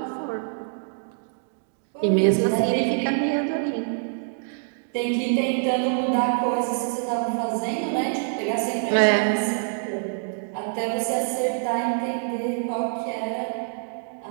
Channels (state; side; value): silent; left; digital silence